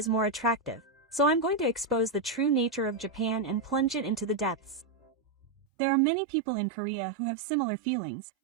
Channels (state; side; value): drops out; left; at 5.7 s